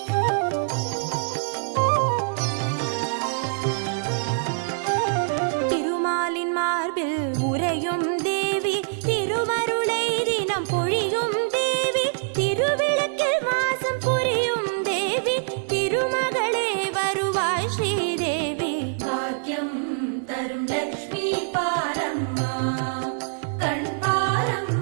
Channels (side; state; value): left; silent; digital silence